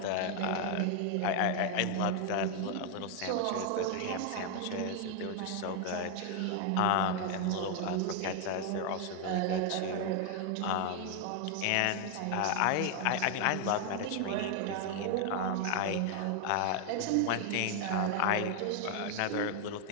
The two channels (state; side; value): different; both; correlation 0.00